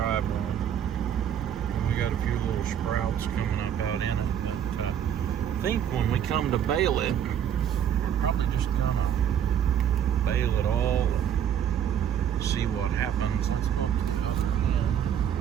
on. And we got a few little sprouts coming up out in it. But I think when we come to bale it, we're probably just gonna bale it all and see what happens. Let's go to the other end,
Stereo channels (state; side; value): quieter; left; 9.4 dB